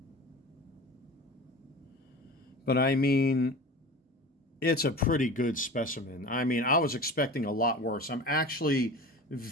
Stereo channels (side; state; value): both; normal; correlation 0.35